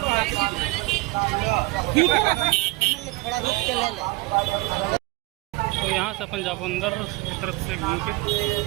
तो यहाँ से अपन जाओ अंदर की तरफ से घूम के।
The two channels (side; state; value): left; quieter; 22.2 dB